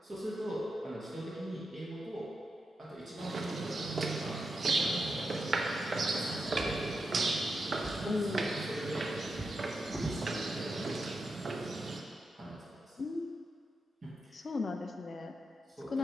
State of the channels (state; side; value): normal; both; correlation 0.87